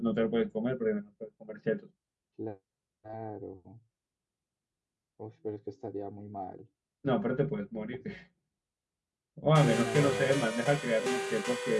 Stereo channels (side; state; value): both; identical; correlation 1.00